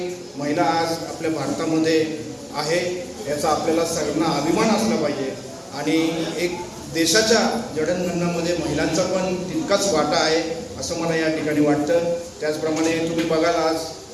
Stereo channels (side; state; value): both; identical; correlation 1.00